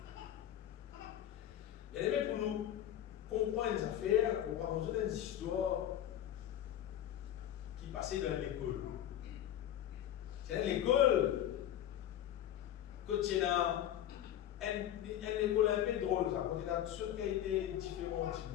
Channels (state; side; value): quieter; right; 11.5 dB